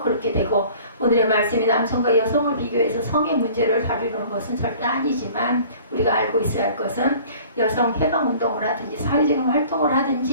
그렇게 되고, 오늘의 말씀이 남성과 여성을 비교해서 성의 문제를 다루는 것은 절대 아니지만 우리가 알고 있어야 할 것은 여성 해방운동을 하든지 사회적인 활동을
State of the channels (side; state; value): both; inverted; correlation -0.49